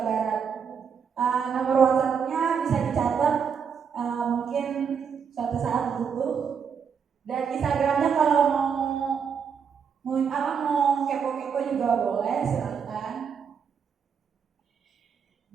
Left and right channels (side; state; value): left; quieter; 6.8 dB